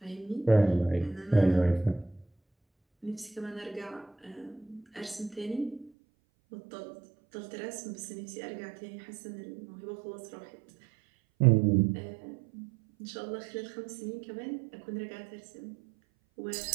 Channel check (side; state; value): left; drops out; at 5.9 s